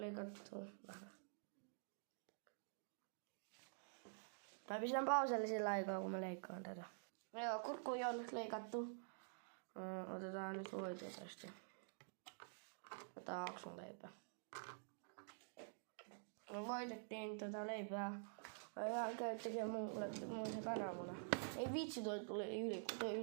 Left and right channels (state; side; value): silent; left; digital silence